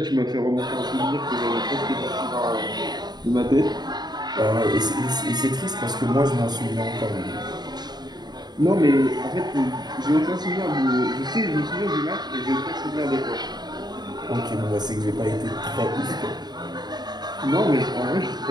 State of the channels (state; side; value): late; left; 0.20 ms